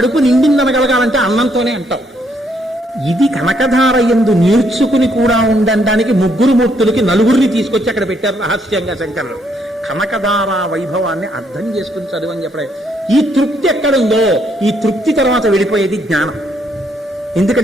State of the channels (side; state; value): both; normal; correlation 0.72